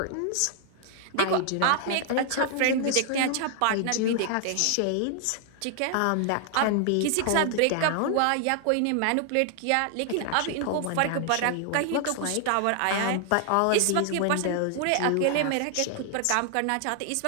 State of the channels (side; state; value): both; different; correlation 0.00